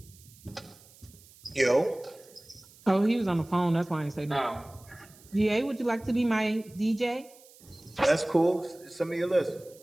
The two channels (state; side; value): noise; right; hiss, 24 dB below the sound